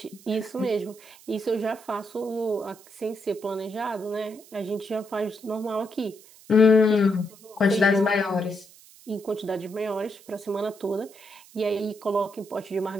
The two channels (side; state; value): right; noise; hiss, 23 dB below the sound